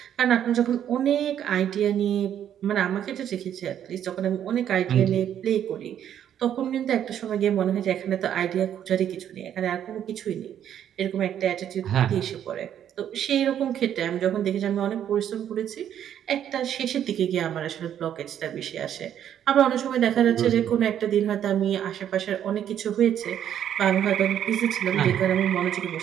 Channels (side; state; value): left; quieter; 9.9 dB